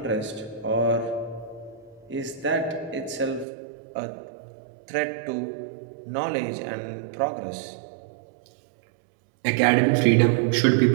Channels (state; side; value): drops out; left; at 3.5 s